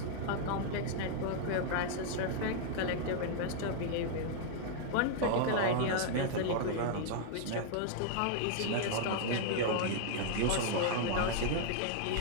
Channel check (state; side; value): different; both; correlation -0.01